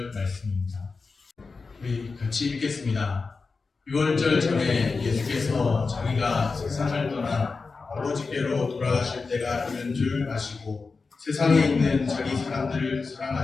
말씀입니다. 우리 같이 읽겠습니다. 6월절 전에 예수께서 자기가 세상을 떠나 아버지께로 돌아가실 때가 이른 줄 아시고 세상에 있는 자기 사람들을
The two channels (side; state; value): right; quieter; 4.4 dB